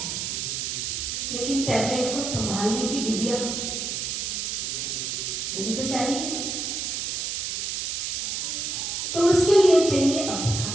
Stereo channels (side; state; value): right; noise; hiss, 2 dB below the sound